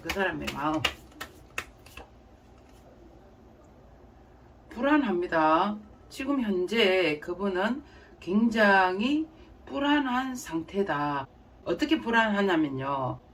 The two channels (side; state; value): both; identical; correlation 1.00